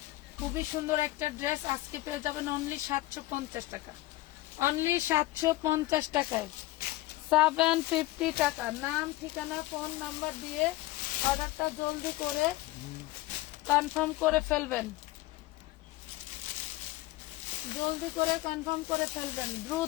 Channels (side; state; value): right; quieter; 17.9 dB